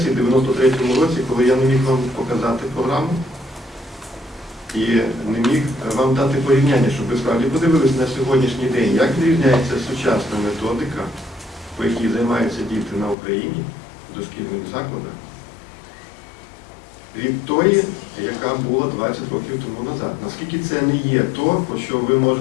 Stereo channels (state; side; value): drops out; right; at 13.2 s